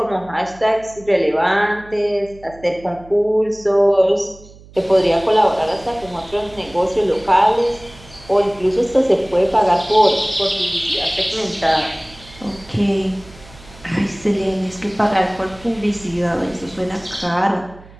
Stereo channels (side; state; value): right; noise; hum, 22 dB below the sound